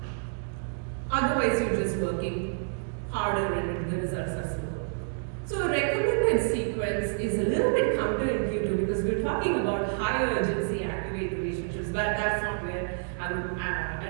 Otherwise, you're just working harder and the results are slow. So a recommended sequence is a little bit counterintuitive because we're talking about high urgency activate relationships, but that's not where I would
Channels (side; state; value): left; silent; digital silence